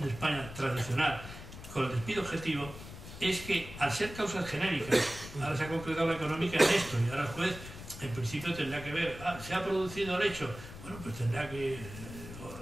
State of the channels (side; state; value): left; noise; rumble, 13 dB below the sound